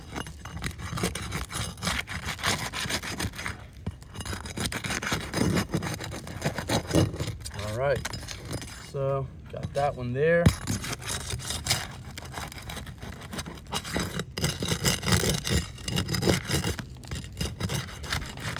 All right, so got that one there.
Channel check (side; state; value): both; identical; correlation 1.00